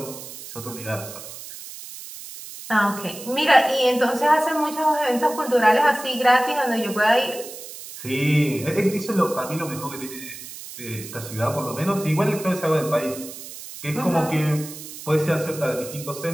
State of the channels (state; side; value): noise; right; hiss, 13 dB below the sound